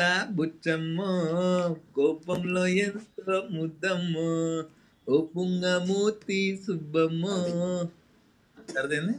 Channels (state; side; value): identical; both; correlation 1.00